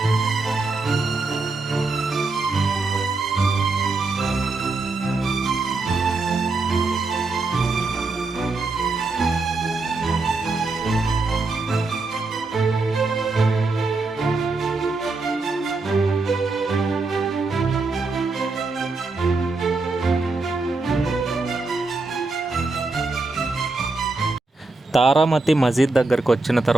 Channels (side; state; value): left; quieter; 3.5 dB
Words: తారామతి మసీద్ దగ్గరికి వచ్చిన